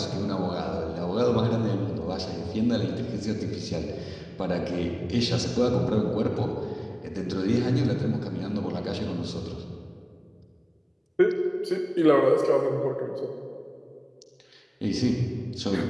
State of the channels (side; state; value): both; identical; correlation 1.00